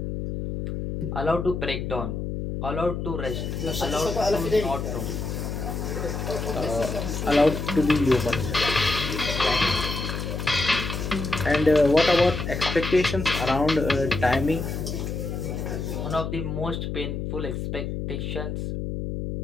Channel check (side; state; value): left; noise; hum, 4 dB below the sound